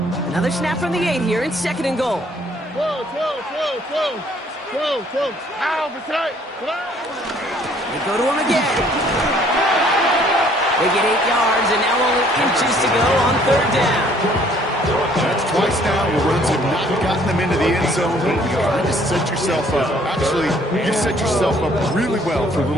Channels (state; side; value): normal; both; correlation 0.60